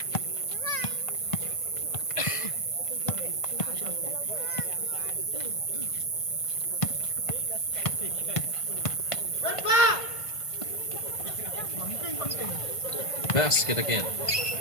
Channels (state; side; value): late; right; 1.5 ms